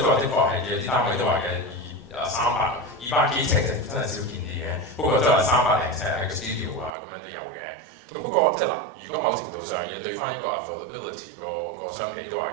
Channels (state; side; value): drops out; left; at 6.9 s